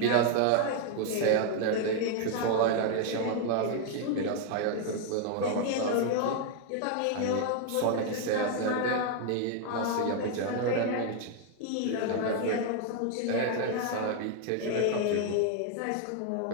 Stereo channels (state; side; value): different; both; correlation 0.00